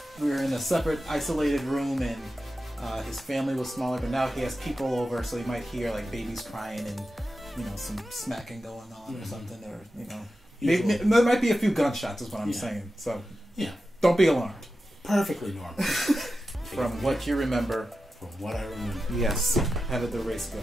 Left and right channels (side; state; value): both; normal; correlation 0.92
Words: we were in a separate, isolated room, and his family was smaller. But now he has people over, so you might hear like babies crying and some smacking going on or something, or maybe, there might be a few gunshots, is what I'm saying. So don't be alarmed. Perfectly normal. From what you remember. From what I remember. Yes. How did the race go?